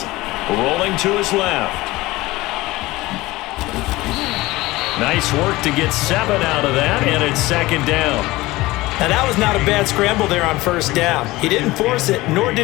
Rolling to his left. Nice work to get 7 out of that, and it's 2nd down. Now that was not a bad scramble there on first down. He didn't force it, nor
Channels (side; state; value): right; quieter; 19.5 dB